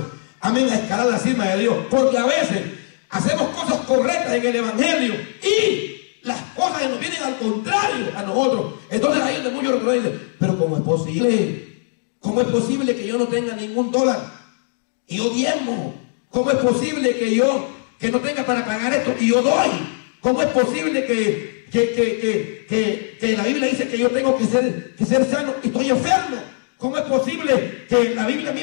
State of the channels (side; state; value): right; silent; digital silence